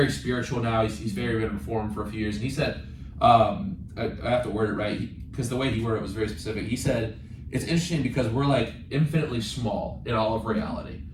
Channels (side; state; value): both; identical; correlation 1.00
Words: spiritual now. He's very been reformed for a few years, and he said, I have to word it right because the way he worded it was very specific. He said, it's interesting because we're like infinitely small in all of reality,